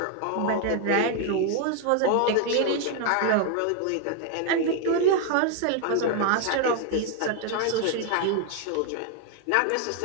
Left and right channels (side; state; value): both; different; correlation 0.00